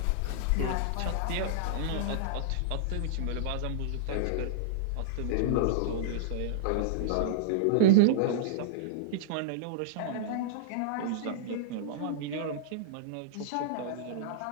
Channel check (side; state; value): both; different; correlation -0.02